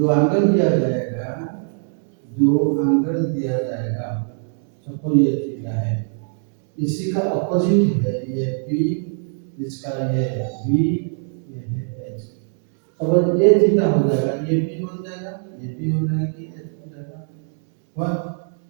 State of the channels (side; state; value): left; silent; digital silence